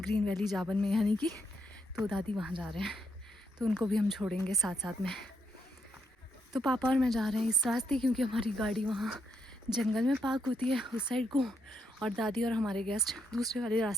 ग्रीन वैली जाबन में यानी कि। तो दादी वहाँ जा रहे हैं तो उनको भी हम छोड़ेंगे साथ साथ में। तो पापा और मैं जा रहे हैं इस रास्ते क्योंकि हमारी गाड़ी वहाँ जंगल में पार्क होती है उस साइड को, और दादी और हमारे गेस्ट दूसरे वाले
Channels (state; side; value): normal; both; correlation 0.78